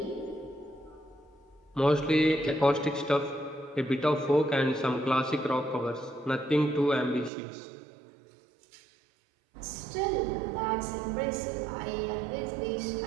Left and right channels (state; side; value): drops out; left; at 7.3 s